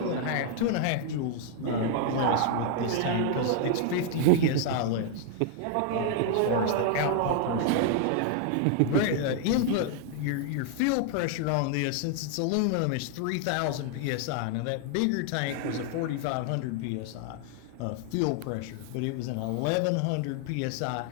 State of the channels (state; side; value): different; both; correlation 0.00